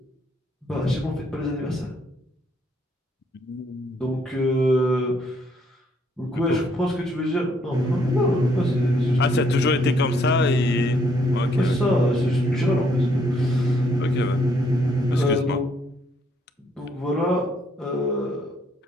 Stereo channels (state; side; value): normal; both; correlation 0.69